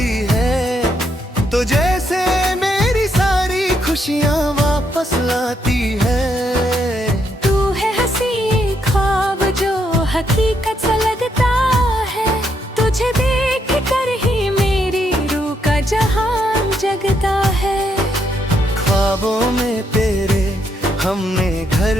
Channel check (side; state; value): both; normal; correlation 0.76